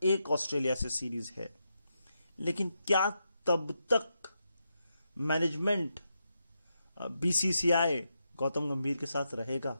एक ऑस्ट्रेलिया से सीरीज है। लेकिन क्या तब तक मैनेजमेंट बीसीसीआई गौतम गंभीर के साथ रहेगा?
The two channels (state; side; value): inverted; both; correlation -0.84